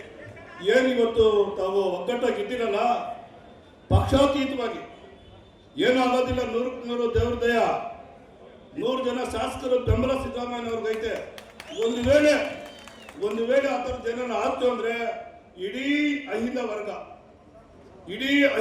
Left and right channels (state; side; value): identical; both; correlation 1.00